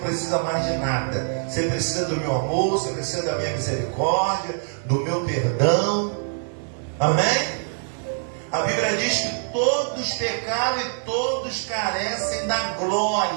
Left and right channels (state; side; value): silent; left; 63 dB below the other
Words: mais de nada. Você precisa do meu amor, você precisa da minha misericórdia, do meu perdão. Amém? A Bíblia diz que todos pecaram e todos carecem da